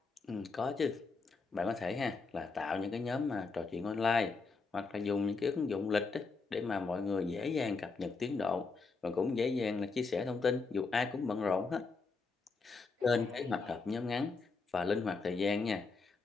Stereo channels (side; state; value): right; quieter; 4.3 dB